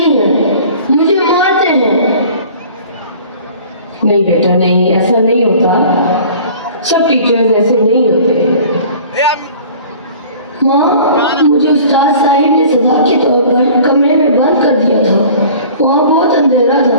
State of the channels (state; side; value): inverted; both; correlation -0.46